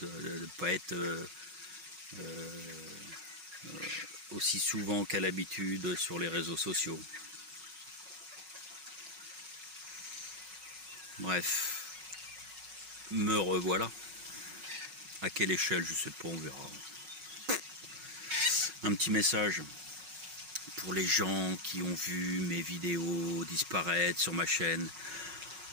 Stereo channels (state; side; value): late; left; 5.4 ms